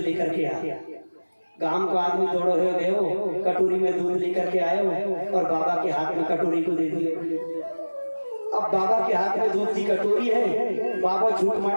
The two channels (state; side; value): inverted; both; correlation -1.00